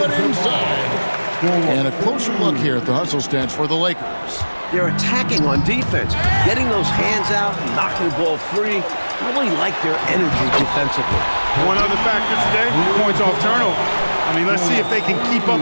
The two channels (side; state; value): both; inverted; correlation -1.00